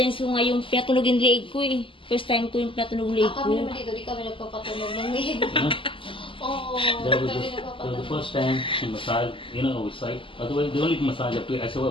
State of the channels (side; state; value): right; late; 0.25 ms